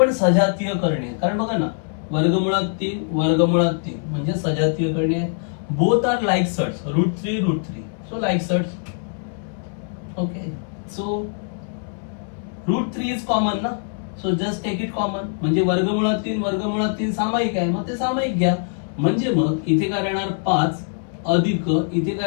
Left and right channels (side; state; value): right; silent; 64 dB below the other